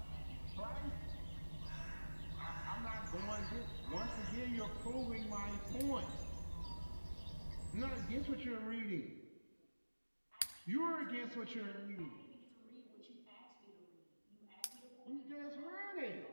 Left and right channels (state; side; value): inverted; both; correlation -1.00